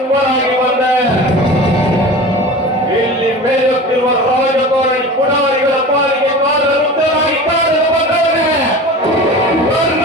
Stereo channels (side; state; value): both; normal; correlation 0.35